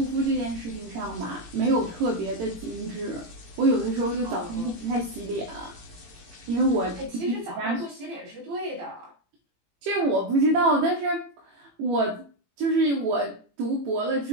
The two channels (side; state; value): left; late; 18 ms